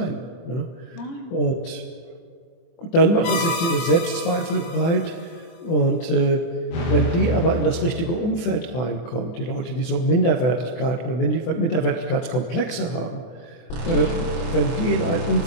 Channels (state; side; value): late; right; 24 ms